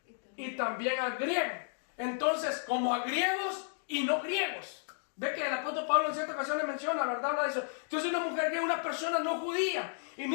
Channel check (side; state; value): right; silent; digital silence